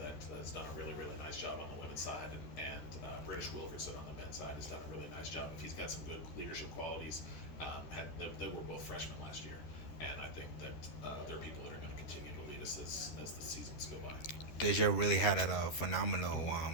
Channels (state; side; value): late; right; 13 ms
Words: has done a really, really nice job on the women's side, and British Wilkerson on the men's side has done a really nice job. If he's got some good leadership qualities, they were both freshmen last year, and I think that there are people that are going to continue to lead us as the seasons go by. Deja really had a phenomenal